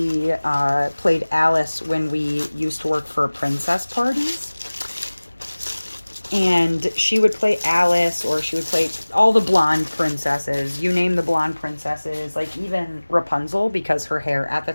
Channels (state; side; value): inverted; both; correlation -1.00